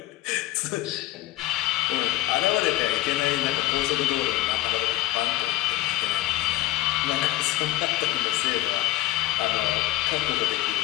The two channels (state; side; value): quieter; right; 15.7 dB